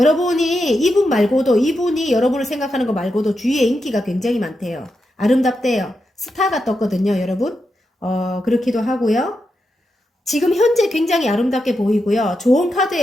이분이 여러분을 생각하는 거 말고도 주위에 인기가 굉장히 많대요. 아름답대요. 스타가 떴거든요, 여러분. 그렇기도 하고요. 지금 현재 굉장히 아름답게 보이고요. 좋은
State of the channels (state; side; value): normal; both; correlation 0.86